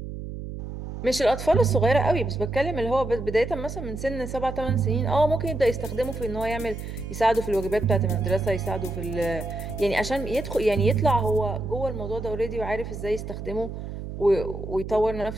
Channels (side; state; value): right; noise; hum, 8 dB below the sound